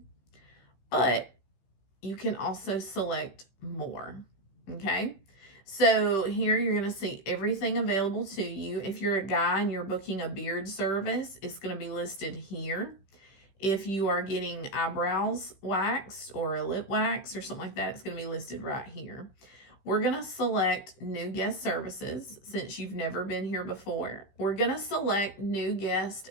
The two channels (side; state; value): right; late; 15 ms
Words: But you can also select more, okay? So here you're going to see everything available to you. If you're a guy and you're booking a beard service, it's going to be listed here. If you are getting eyebrows waxed or a lip wax or something like that, it's going to be listed right here. We're going to select New Guest Services since you've never been here before. We're going to select New Guest